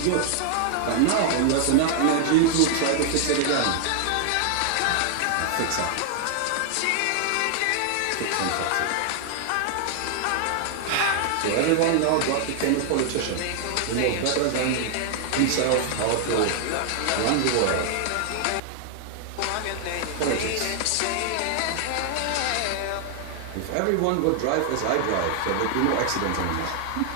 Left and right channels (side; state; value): both; different; correlation 0.00